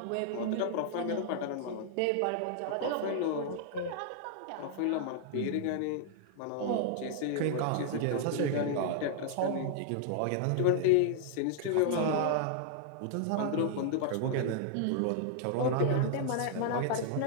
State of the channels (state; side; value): different; both; correlation -0.01